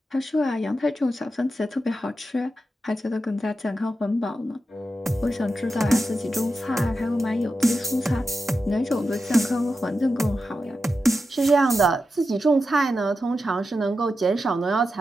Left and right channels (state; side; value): normal; both; correlation 0.90